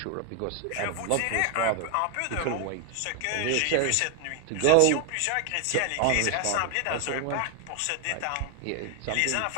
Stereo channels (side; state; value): both; different; correlation 0.00